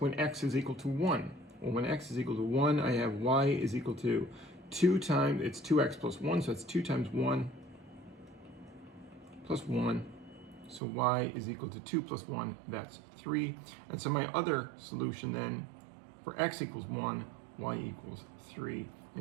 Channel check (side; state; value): left; drops out; at 10.8 s